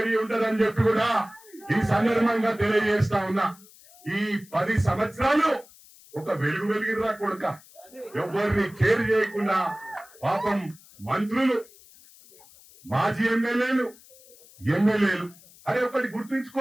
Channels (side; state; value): left; noise; hiss, 24 dB below the sound